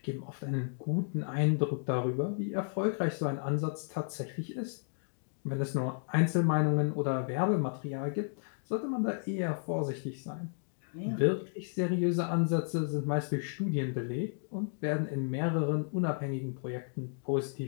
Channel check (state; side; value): silent; right; digital silence